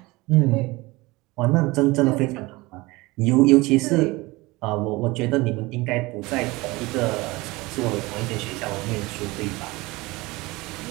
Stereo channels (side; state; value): left; quieter; 22.2 dB